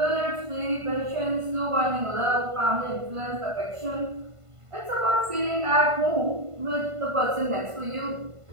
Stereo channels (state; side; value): late; left; 1.5 ms